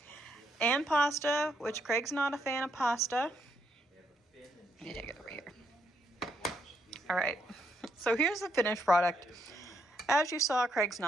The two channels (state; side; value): normal; both; correlation 0.76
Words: and pasta, which Craig's not a fan of pasta. Let me take it over here. All right, so here's the finished product. As you saw, Craig's